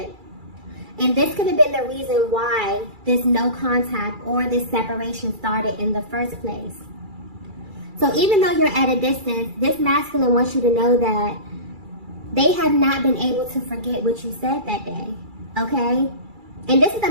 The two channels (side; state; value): left; late; 2.3 ms